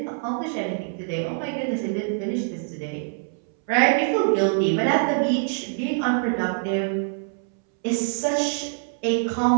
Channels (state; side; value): silent; left; 62 dB below the other